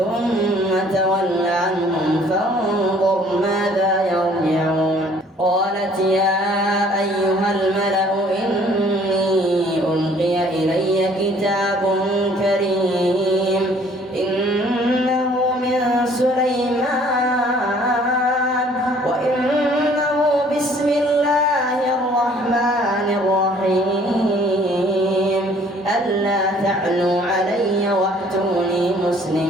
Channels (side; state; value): both; normal; correlation 0.57